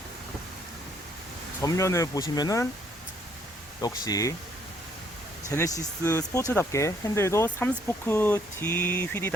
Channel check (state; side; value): normal; both; correlation 0.67